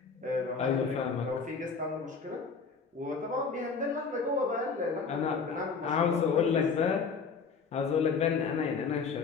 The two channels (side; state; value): right; quieter; 5.2 dB